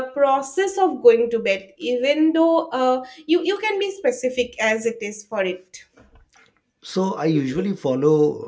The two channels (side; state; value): both; identical; correlation 1.00